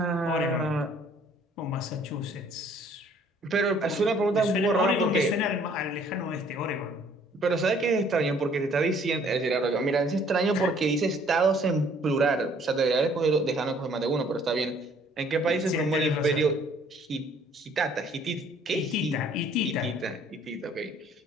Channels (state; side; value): normal; both; correlation 0.59